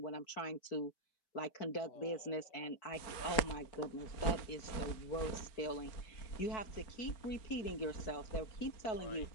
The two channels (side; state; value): right; late; 4.4 ms